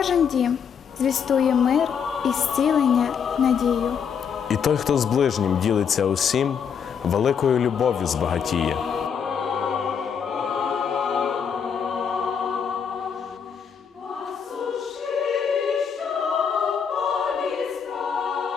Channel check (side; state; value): right; quieter; 7.1 dB